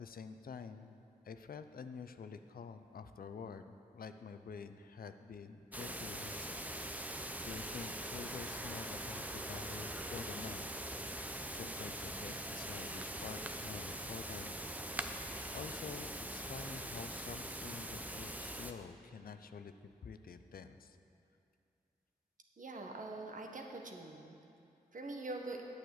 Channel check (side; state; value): both; normal; correlation 0.43